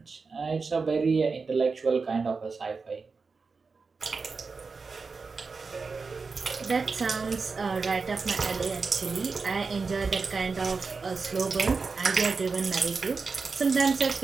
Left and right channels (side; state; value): left; quieter; 4.6 dB